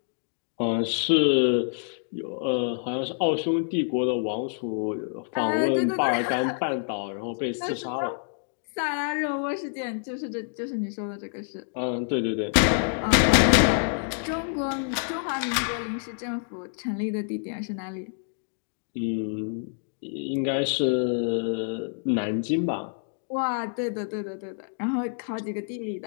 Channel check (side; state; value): right; silent; digital silence